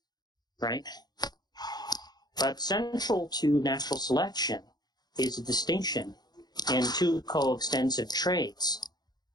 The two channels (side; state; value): right; late; 0.20 ms